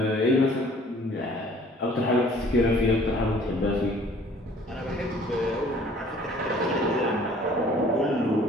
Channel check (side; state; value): both; normal; correlation 0.54